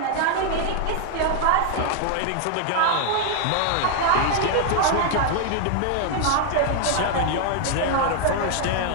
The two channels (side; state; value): both; different; correlation 0.00